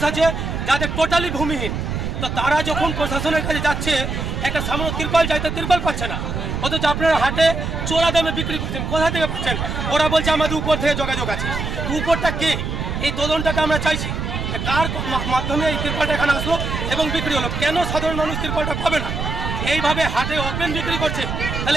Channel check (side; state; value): right; noise; rumble, 3 dB below the sound